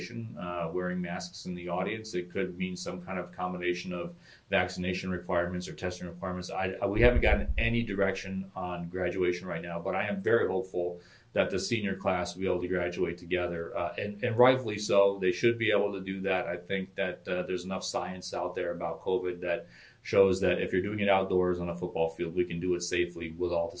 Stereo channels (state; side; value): identical; both; correlation 1.00